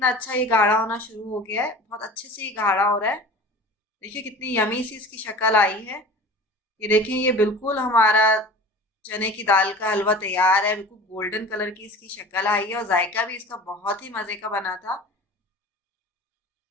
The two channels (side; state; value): both; normal; correlation 0.38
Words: अच्छा ये गाढ़ा होना शुरू हो गया है, बहुत अच्छे से ये गाढ़ा हो रहा है। देखिए कितनी यमी सी इसकी शक्ल आई है। ये देखें, ये बिल्कुल हमारा चने की दाल का हलवा तैयार है। बिल्कुल गोल्डन कलर की इसकी शक्ल आई है और जायका भी इसका बहुत ही मजे का बना था।